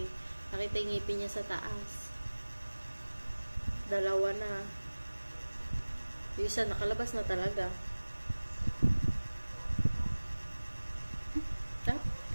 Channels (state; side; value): inverted; both; correlation -1.00